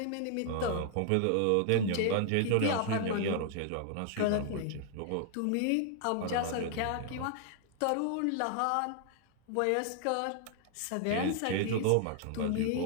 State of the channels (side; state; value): both; different; correlation 0.00